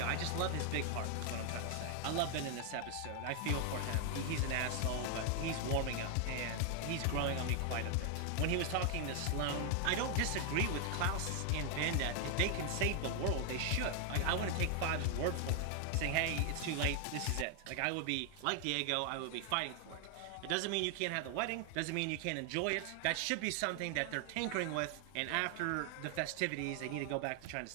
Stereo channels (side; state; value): both; different; correlation 0.00